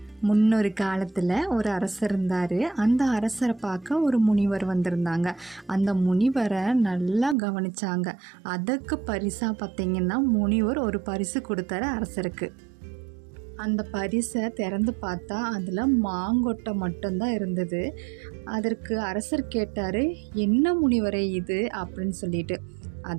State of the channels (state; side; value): drops out; left; at 7.4 s